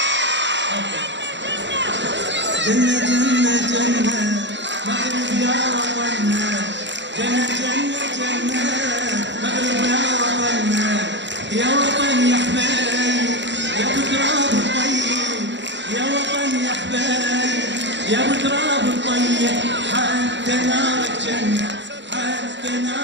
جنة جنة جنة مغرب يا وطننا. جنة جنة جنة مغرب يا وطننا. يا وطن يا حبايب يا ابو تراب الطيب. يا وطن يا حبايب يا ابو تراب الطيب. حتى نارك جنة حتى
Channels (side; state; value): left; late; 0.52 ms